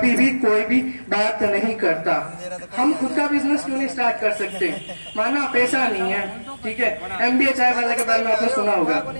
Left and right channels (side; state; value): both; inverted; correlation -1.00